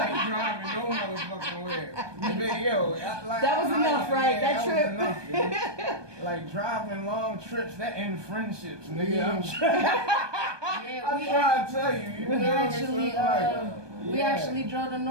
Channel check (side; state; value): left; late; 1.2 ms